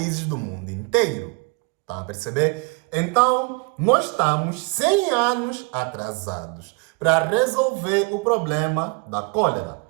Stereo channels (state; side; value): quieter; left; 30.3 dB